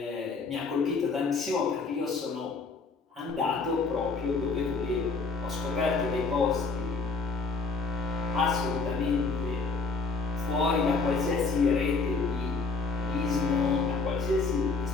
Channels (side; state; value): right; quieter; 4.2 dB